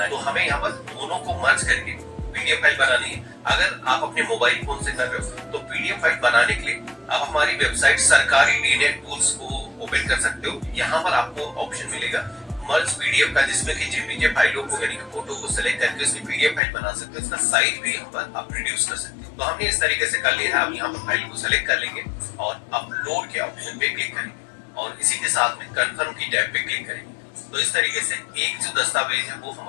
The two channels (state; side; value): drops out; right; at 16.6 s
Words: है। तो हमें यहाँ पर दोनों को मर्ज करके PDF फाइल बनानी है। अगर आप अपने मोबाइल फोन से कर रहे हो तो PDF फाइल बनाने के लिए आप हमारी वेबसाइट सरकारी DNet टूल्स को ओपन कर सकते हो। यहाँ पर आपको ऑप्शन मिलेगा मर्ज PDF का, जिसमें कि JPG फाइलों को यानी कि फोटो को सेलेक्ट करके उसकी PDF फाइल बना सकते हो, उसका साइज भी यहाँ पर आप रिड्यूस कर सकते हो। तो हमने इस तरीके से कर लिया है। अब यहाँ पर फाइल को सेलेक्ट कर लेंगे और अपलोड के ऑप्शन पे क्लिक करेंगे और इसी के साथ में कंफर्म की टैब पे क्लिक करेंगे। तो इस तरीके से एक जो दस्तावेज है वो